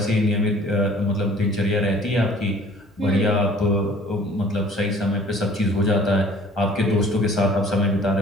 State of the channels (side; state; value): both; normal; correlation 0.51